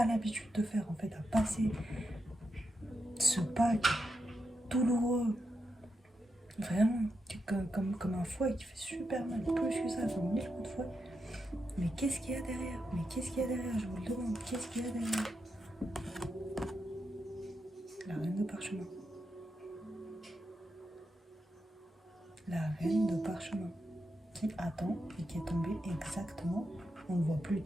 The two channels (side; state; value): both; normal; correlation 0.86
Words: l'habitude de faire, en fait, à passer ce pas douloureux, vraiment, comme un fouet qui fait super mal, plus que ça, comme 1000 coups de fouet. Mais qu'est-ce qu'il y a derrière? Mais qu'est-ce qu'il y a derrière? Je vous le demande, qu'est-ce qu'il y a derrière? La reine de parchemin. La reine de parchemin qui attend et qui est tombée exactement, on ne le voit plus